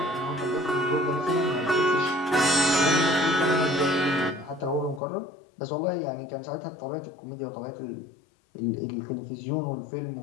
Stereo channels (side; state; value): right; drops out; at 5.0 s